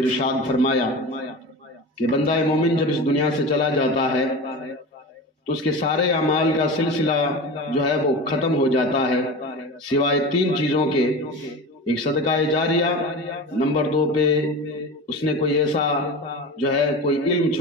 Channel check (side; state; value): both; normal; correlation 0.29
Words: فرمایا کہ بندہ مومن جب اس دنیا سے چلا جاتا ہے تو اس کے سارے اعمال کا سلسلہ جو ہے وہ ختم ہو جاتا ہے سوائے تین چیزوں کے، ایک صدقہ جاریہ، نمبر 2 پہ اس نے کوئی ایسا جو ہے کوئی علم